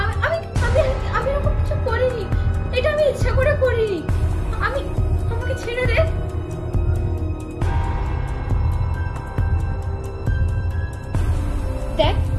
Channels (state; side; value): identical; both; correlation 1.00